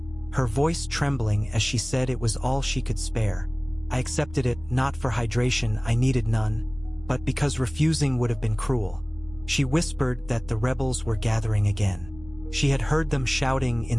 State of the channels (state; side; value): noise; left; rumble, 18 dB below the sound